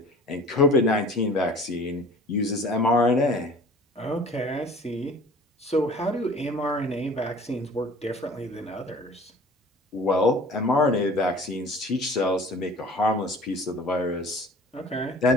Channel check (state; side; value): normal; both; correlation 0.46